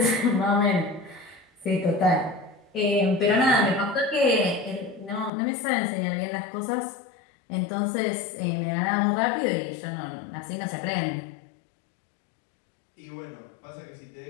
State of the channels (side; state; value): right; drops out; at 5.3 s